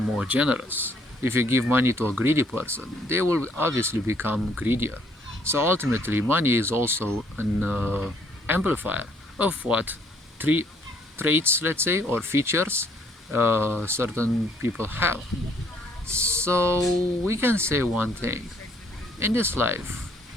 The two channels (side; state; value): both; normal; correlation 0.65